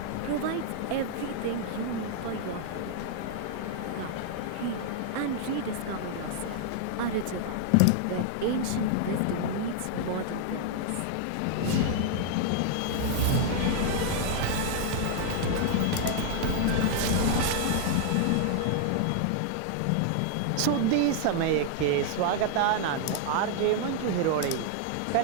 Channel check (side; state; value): both; different; correlation 0.00